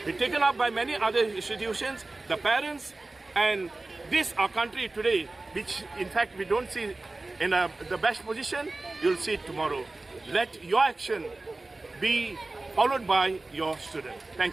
be taken up by many other institutions, the parents, and this our country today, which in fact we don't see in the best position, you'll see it tomorrow. Let your action be followed by your student.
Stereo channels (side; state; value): left; quieter; 3.1 dB